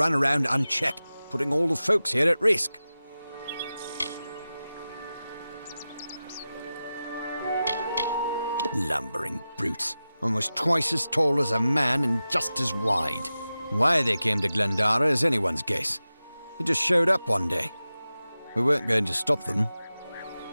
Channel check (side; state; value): both; inverted; correlation -0.94